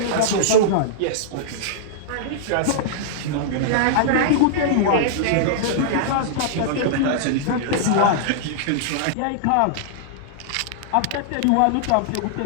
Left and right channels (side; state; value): both; different; correlation -0.02